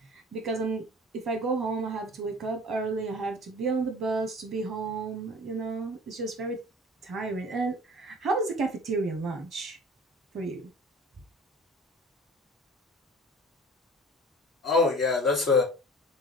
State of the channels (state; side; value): normal; both; correlation 0.43